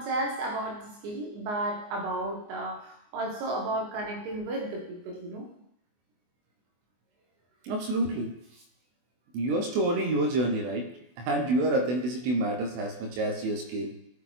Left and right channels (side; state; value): left; late; 24 ms